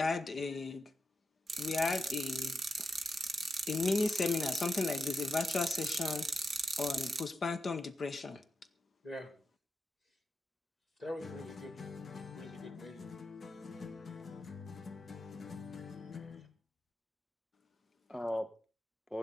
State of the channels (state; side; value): normal; both; correlation 0.85